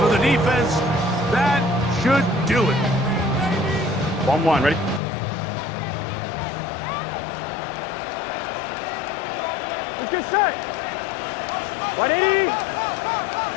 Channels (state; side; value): drops out; right; at 5.0 s